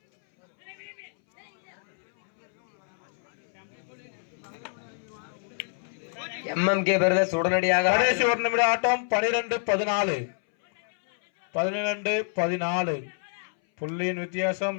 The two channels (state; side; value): silent; right; 60 dB below the other